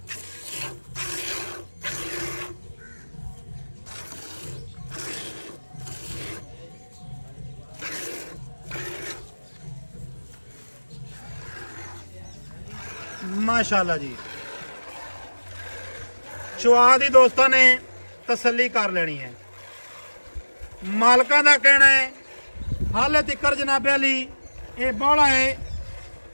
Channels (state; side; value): inverted; both; correlation -1.00